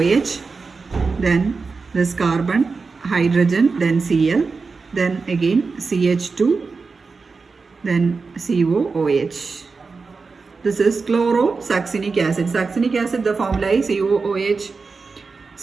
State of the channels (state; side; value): quieter; left; 4.5 dB